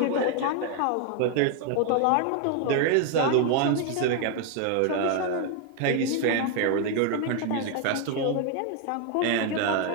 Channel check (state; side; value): different; both; correlation 0.01